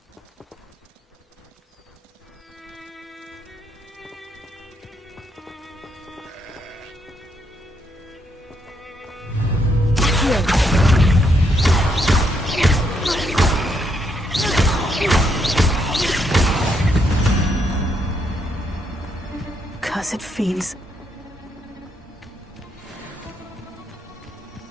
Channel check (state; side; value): normal; both; correlation 0.76